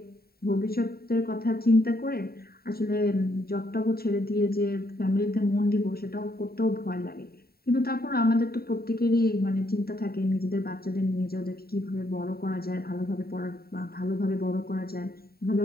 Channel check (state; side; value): late; right; 0.45 ms